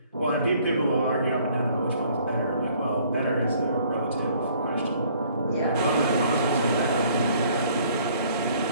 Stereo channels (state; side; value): inverted; both; correlation -0.60